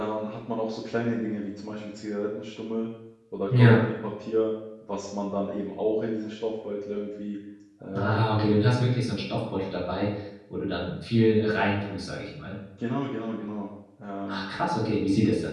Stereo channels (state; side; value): identical; both; correlation 1.00